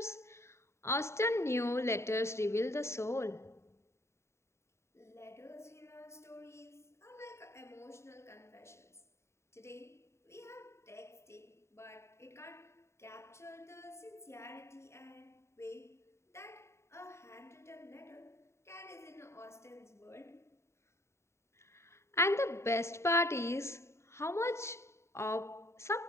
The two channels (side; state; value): right; late; 0.13 ms